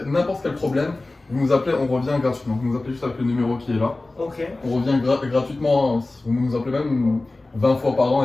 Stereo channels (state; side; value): quieter; right; 3.0 dB